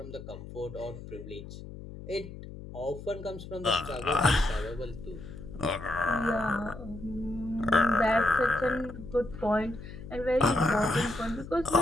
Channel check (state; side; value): noise; left; hum, 13 dB below the sound